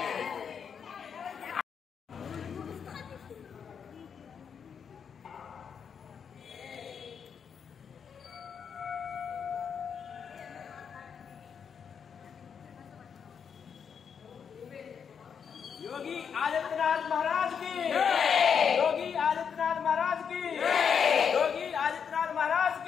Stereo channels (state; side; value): quieter; right; 7.0 dB